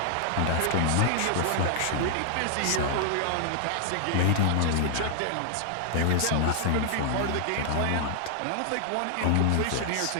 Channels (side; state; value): both; different; correlation 0.00